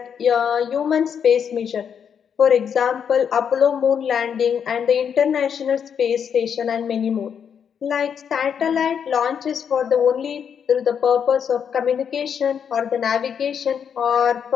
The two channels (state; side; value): quieter; right; 7.6 dB